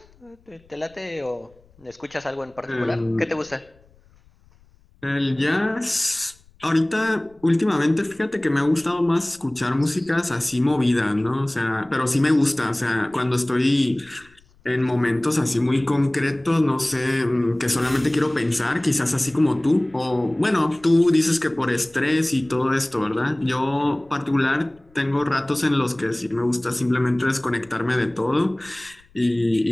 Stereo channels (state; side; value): noise; left; rumble, 30 dB below the sound